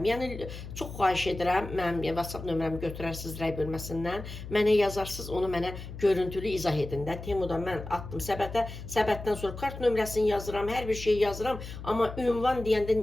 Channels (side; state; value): left; noise; hum, 11 dB below the sound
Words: Yəni, çox xahiş edirəm, mənim WhatsApp nömrəmi götürərsiniz rəy bölməsindən, mənə yazarsınız, onu mənə görüntülü izah edin də. Temudan mən atdım səbətə, səbətdən sonra kart nömrəsini yazıram, hər bir şeyi yazıram, amma ünvan